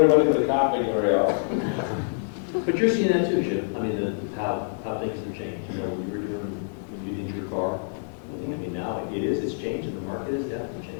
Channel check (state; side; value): silent; right; 61 dB below the other